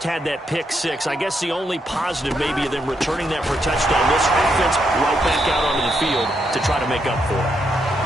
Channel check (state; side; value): normal; both; correlation 0.79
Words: had that pick six. I guess the only positive maybe of them returning that for a touchdown. This offense right back out onto the field to try to make up for it.